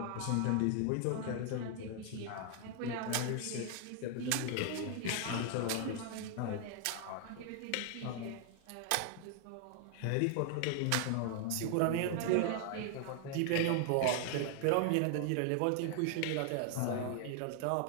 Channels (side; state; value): both; different; correlation 0.00